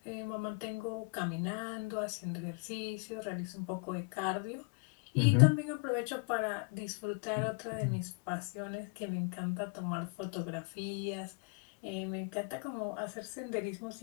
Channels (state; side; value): quieter; right; 35.4 dB